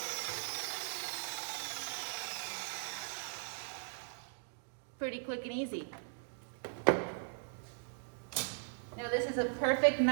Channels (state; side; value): silent; left; digital silence